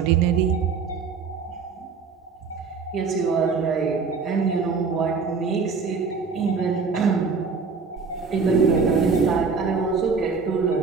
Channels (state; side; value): quieter; left; 5.1 dB